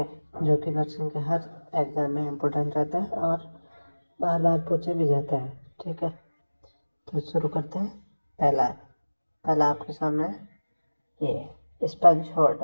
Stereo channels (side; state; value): both; inverted; correlation -1.00